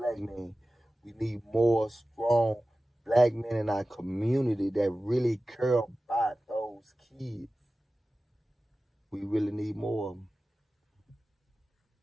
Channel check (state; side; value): normal; both; correlation 0.96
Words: men. We need more strong black men in our community that really care about those kids. We really need more of them.